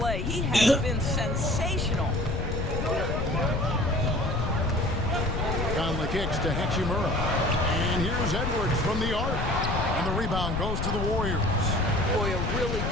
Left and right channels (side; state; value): left; noise; rumble, 2 dB below the sound